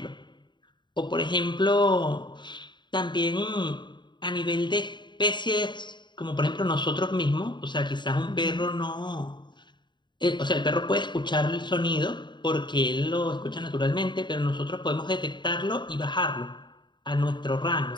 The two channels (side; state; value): right; late; 0.22 ms